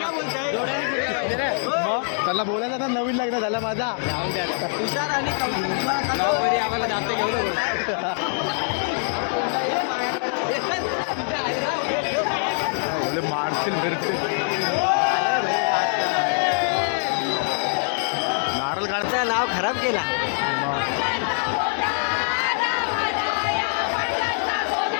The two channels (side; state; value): right; silent; digital silence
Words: मग त्याला बोलायचं आता नवीन लग्न झालं माझा. हुशार आणि आम्हाला जास्त घेऊन बोले मारशील फिरते नारळ काढ नाव खराब केला.